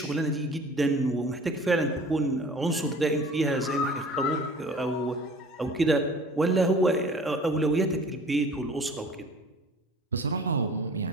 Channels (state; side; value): normal; both; correlation 0.46